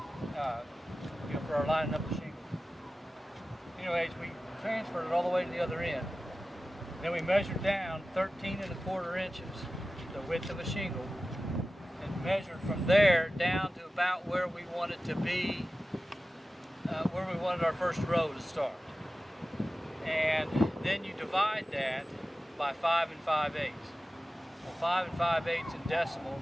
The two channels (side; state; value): both; normal; correlation 0.95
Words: for our lining up the shingles. Anyways, we transferred it all the way to the other end. Then we measured down 13¼ inches, the width of a shingle, and measured from there down to about where we wanted to be, where we wanted our first row to start. And then you divide that by 5 5/8. Well, 5 5/8 in decimals